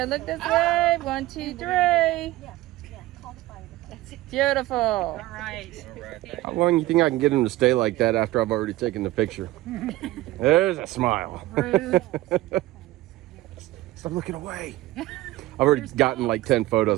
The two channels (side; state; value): left; quieter; 17.4 dB